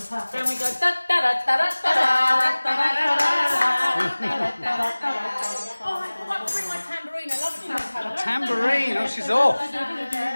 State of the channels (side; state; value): both; inverted; correlation -1.00